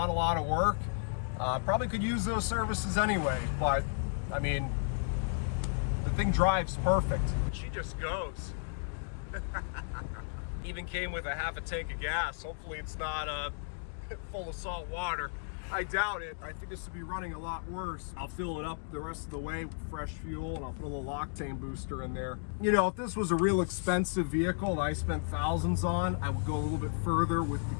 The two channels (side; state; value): right; silent; digital silence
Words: a lot of work. Probably could use those services anyway, but I mean, the thing drives perfect. She just goes. Even came with a half a tank of gas. Hopefully it's not full of salt water. I doubt it. I think this would be running a lot worse. I'll fill it up the rest of the way with fresh fuel, and I'll put a little octane booster in there. You know, if this was a real expensive vehicle that I spent thousands on, I would go a little bit further with the